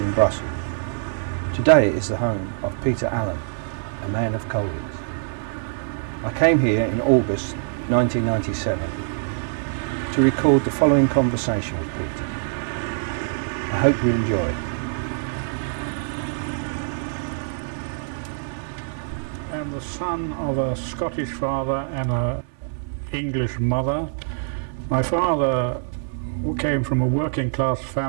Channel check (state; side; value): silent; left; 59 dB below the other